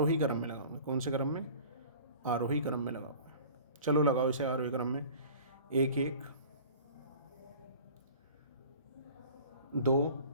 क्रम में लगाओगे। कौन से क्रम में? आरोही क्रम में लगाओगे। चलो लगाओ इसे आरोही क्रम में, 1 1 2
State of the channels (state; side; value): inverted; both; correlation -0.44